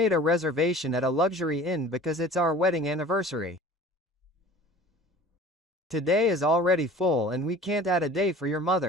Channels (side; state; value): both; normal; correlation 0.44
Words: a reservation at a luxury inn because it's our wedding anniversary. Today is already full and we can't add a day for your